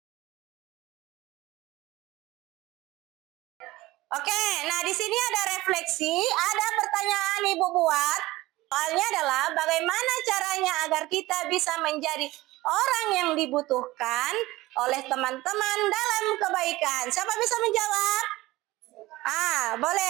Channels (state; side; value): quieter; left; 18.7 dB